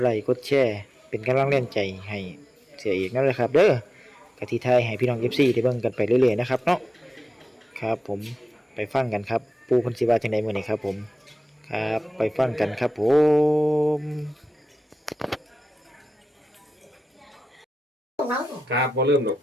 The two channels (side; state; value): both; normal; correlation 0.94